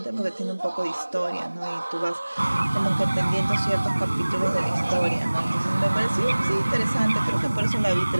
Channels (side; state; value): both; inverted; correlation -1.00